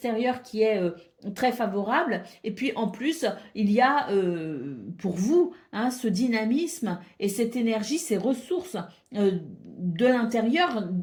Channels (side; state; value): both; identical; correlation 1.00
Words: qui est très favorable. Et puis en plus, il y a pour vous hein, ce dynamisme et cette énergie, ces ressources de l'intérieur,